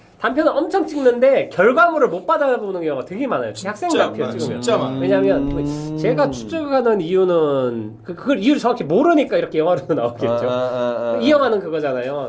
단편을 엄청 찍는데 결과물을 못 받아보는 경우가 되게 많아요. 학생 단편 찍으면. 진짜 많아요. 왜냐하면 제가 추측하는 이유는 그걸 이유를 정확히 모르니까 이렇게 영화로 나오겠죠. 이 영화는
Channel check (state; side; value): identical; both; correlation 1.00